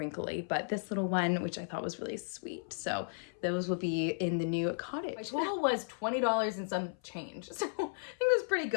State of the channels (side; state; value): right; silent; 55 dB below the other